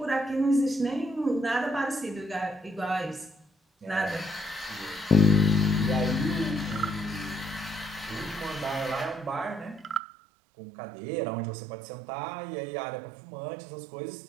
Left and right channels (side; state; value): left; drops out; at 10.0 s